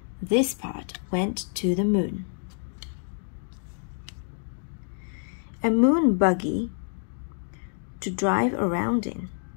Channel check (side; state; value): right; silent; digital silence